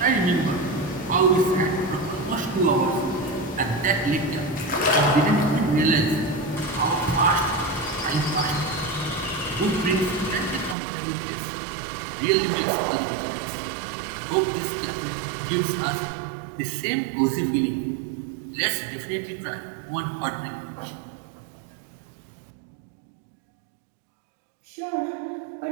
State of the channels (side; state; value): left; drops out; at 10.8 s